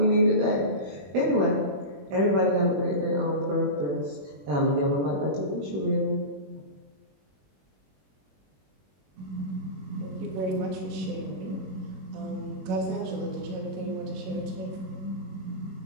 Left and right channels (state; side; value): late; left; 21 ms